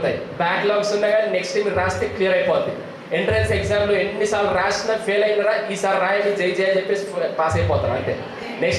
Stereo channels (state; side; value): identical; both; correlation 1.00